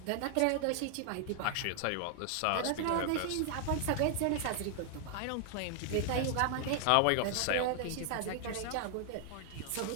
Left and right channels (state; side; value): different; both; correlation 0.00